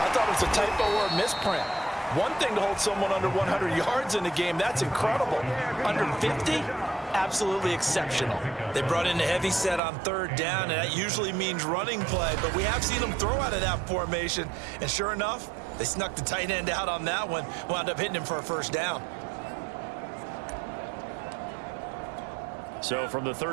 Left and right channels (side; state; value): left; drops out; at 9.8 s